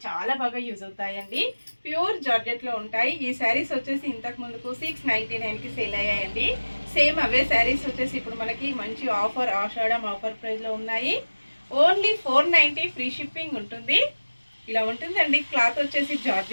చాలా బాగా యూజ్ అవుతాయండి. ప్యూర్ జార్జెట్లో ఉంటాయి. ఈ శారీస్ వచ్చేసి ఇంతకు ముందుకు 699కి సేల్ అయ్యాయండి. సేమ్ అవే శారీస్ వచ్చేసి ఇప్పుడు మనకి మంచి ఆఫర్, ఆషాఢం ఆఫర్ ప్రైస్లో ఉన్నాయి. ఓన్లీ 490 ఫ్రీ షిప్పింగ్ ఉంటుంది. ఇలా ఉంటుందండి. క్లాత్ వచ్చేసి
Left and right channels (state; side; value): inverted; both; correlation -1.00